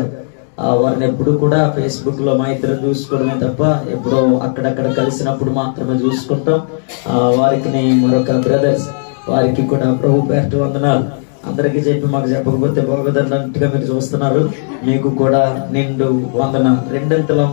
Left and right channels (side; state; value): right; silent; 70 dB below the other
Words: వారిని ఎప్పుడు కూడా ఫేస్బుక్ లో మా ఇద్దరు చూసుకోవడమే తప్ప ఎప్పుడో అక్కడక్కడ కలిసినప్పుడు మాత్రమే చూసుకుంటాం. వారికి మరొక బ్రదర్స్, వారికి కూడా ప్రభు పేరిట వందనాలు. అందరికీ చెప్పి మాకు చెప్పకపోతే బాగోదన్నట్టుగా మీరు చూస్తున్నారు. మీకు కూడా నిండు వందనాలు, రెండంతల